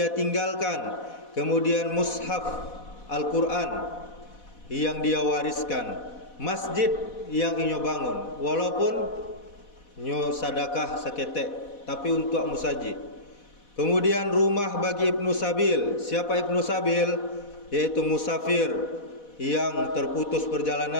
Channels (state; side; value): late; right; 4.1 ms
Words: tinggalkan, kemudian mushaf Al-Quran yang dia wariskan, masjid yang inyo bangun, walaupun nyo sadakah seketek tapi untuk musajid. Kemudian rumah bagi Ibnu Sabil. Siapa Ibnu Sabil? Yaitu musafir yang terputus